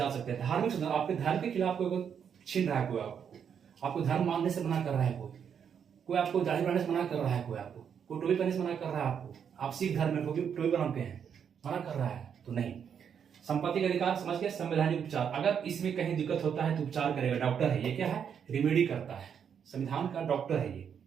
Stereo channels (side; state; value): left; quieter; 7.7 dB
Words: सकते हैं। धार्मिक शोषण, आपके धर्म के खिलाफ कोई छीन रहा है, कोई आपको धर्म मानने से मना कर रहा है, कोई आपको दाढ़ी बनाने से मना कर रहा है, कोई टोपी पहनने से मना कर रहा है, आपको आप सिख धर्म में टोपी बनाते हैं, मना कर रहा है, तो नहीं। संपत्ति का अधिकार समझ के संवैधानिक उपचार, अगर इसमें कहीं दिक्कत होता है तो उपचार करेगा, डॉक्टर है ये, क्या है? रिमेडी करता है, संविधान का डॉक्टर है ये।